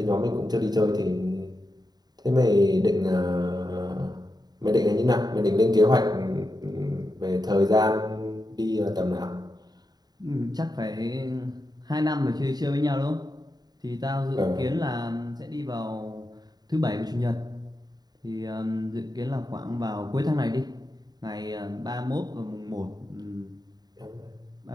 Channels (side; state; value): left; late; 0.20 ms